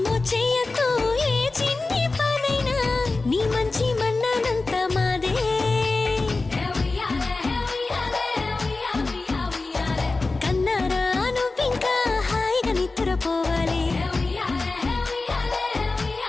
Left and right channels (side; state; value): right; quieter; 3.5 dB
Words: చెయ్యకు ఏ చిన్ని పనైనా నీ మంచి మన్నానంత మాదే కన్నారా నువ్వింకా హాయిగా నిద్రపోవాలి